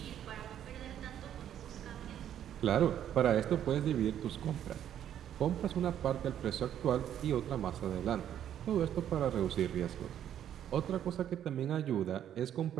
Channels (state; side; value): quieter; left; 10.3 dB